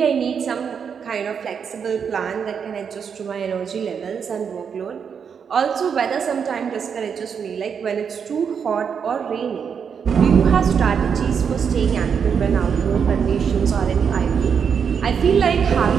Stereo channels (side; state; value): left; quieter; 6.9 dB